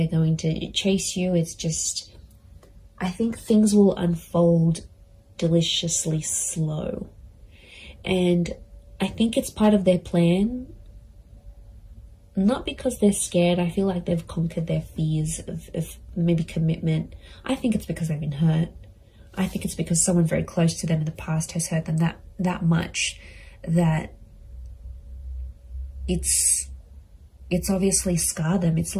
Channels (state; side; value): identical; both; correlation 1.00